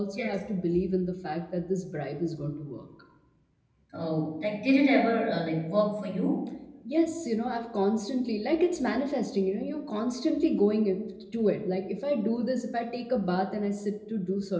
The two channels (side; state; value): both; identical; correlation 1.00